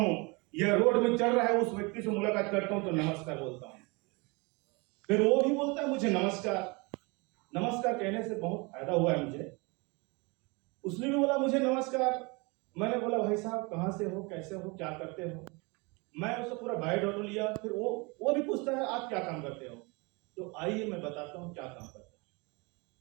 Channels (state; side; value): quieter; left; 28.1 dB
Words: या रोड में चल रहा है उस व्यक्ति से मुलाकात करता हूं तो नमस्कार बोलता हूं। फिर वो भी बोलता है मुझे नमस्कार। नमस्कार कहने से बहुत फायदा हुआ है मुझे। उसने भी बोला मुझे नमस्कार। मैंने बोला भाई साहब कहां से हो, कैसे हो, क्या करते हो। मैं उससे पूरा बायोडाटा लिया। फिर वो भी पूछता है आप क्या काम करते हो। तो आइए मैं बताता हूं क्या काम करते हो।